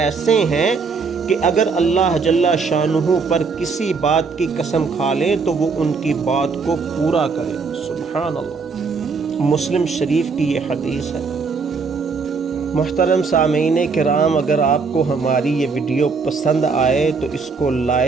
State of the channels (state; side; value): quieter; left; 4.8 dB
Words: ہیں کہ اگر اللہ جل شانہ پر کسی بات کی قسم کھا لیں تو وہ ان کی بات کو پورا کرے۔ سبحان اللہ۔ مسلم شریف کی یہ حدیث ہے۔ محترم سامعین کرام، اگر آپ کو ہماری یہ ویڈیو پسند آئے تو اس کو